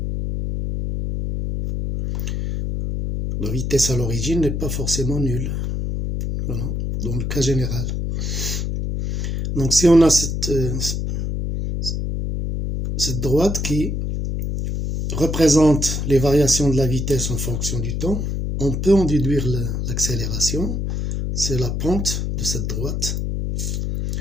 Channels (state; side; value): noise; left; hum, 2 dB below the sound